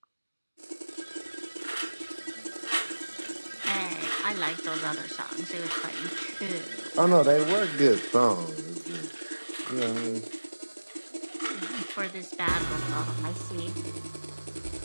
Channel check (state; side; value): inverted; both; correlation -1.00